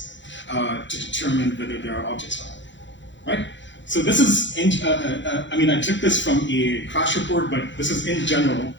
to determine whether there are objects around, right? So this is, I took this from a crash report, but this is in general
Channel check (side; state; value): right; late; 0.54 ms